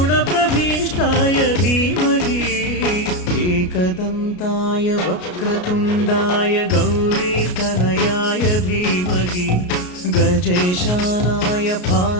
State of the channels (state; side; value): late; right; 33 ms